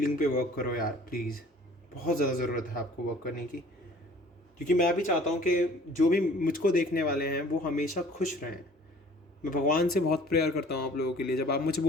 पे वर्क करो यार, प्लीज़। बहुत ज़्यादा ज़रूरत है आपको वर्क करने की, क्योंकि मैं भी चाहता हूँ कि जो भी मुझको देखने वाले हैं वो हमेशा खुश रहें। मैं भगवान से बहुत प्रेयर करता हूँ आप लोगों के लिए। जब आप मुझे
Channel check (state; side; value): normal; both; correlation 0.51